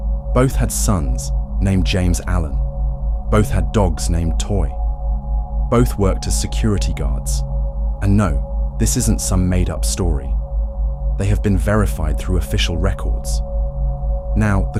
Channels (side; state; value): both; identical; correlation 1.00